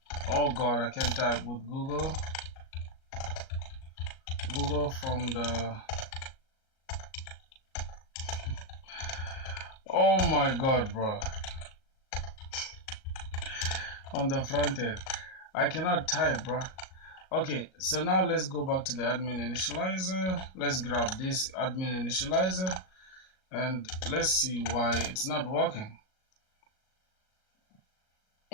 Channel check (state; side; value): late; right; 38 ms